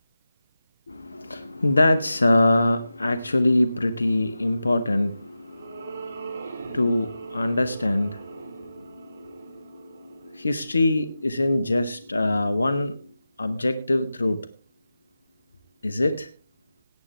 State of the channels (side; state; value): both; inverted; correlation -0.93